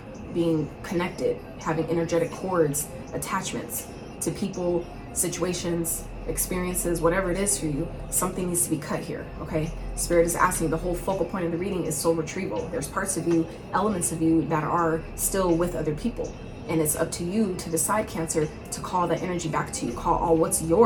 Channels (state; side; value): identical; both; correlation 1.00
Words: being connected, having energetic cords, attachments to people, situations, experiences, whatever it is for you. Something needs to be cut here, okay? Spirit is asking, the whole focal point of the reading is soul retrieval. There's parts of you, elements of you that are still with other people. And it's up to you to decide, Cancer, to call that energy back to you. Call all what's